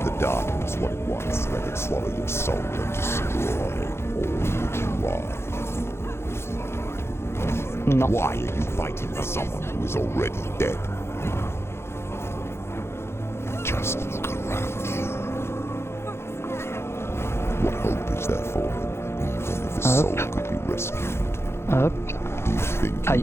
the darkness what it wants, let it swallow your soul and destroy all that you are. Non. Why are you fighting for someone who is already dead? Just look around you. What hope is there for him, even if his soul could be rescued? Hop. Do you think Aïe.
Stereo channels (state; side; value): late; right; 0.12 ms